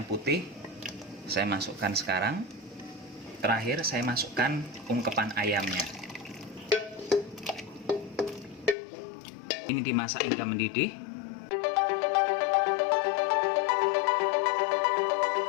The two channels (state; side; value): drops out; right; at 8.8 s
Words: putih saya masukkan sekarang. Terakhir saya masukkan ungkepan ayamnya. Ini dimasak hingga mendidih.